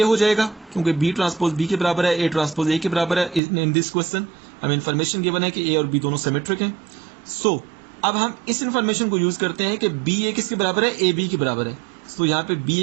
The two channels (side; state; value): left; drops out; at 3.4 s